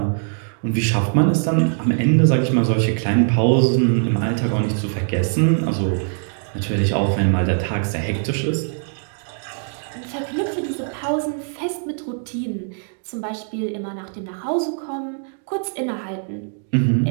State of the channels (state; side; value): silent; left; 64 dB below the other